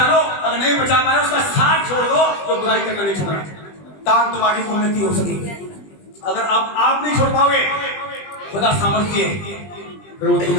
लो, अगर नहीं बचा पाए उसका साथ छोड़ दो, तो बुराई करना नहीं छोड़ रहा, ताकि तुम्हारी उन्नति हो सके। अगर आप नहीं छोड़ पाओगे, खुदा सामर्थ्य है, फिर वो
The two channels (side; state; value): right; late; 20 ms